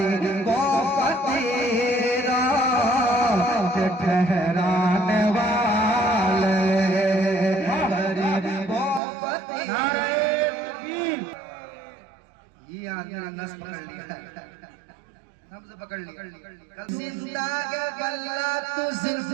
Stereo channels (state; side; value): drops out; left; at 9.0 s